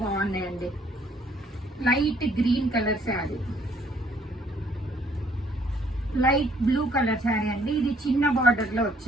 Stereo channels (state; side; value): normal; both; correlation 0.64